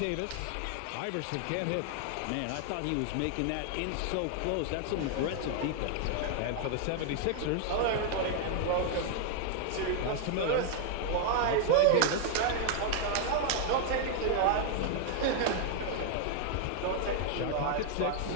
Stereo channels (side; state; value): both; different; correlation 0.00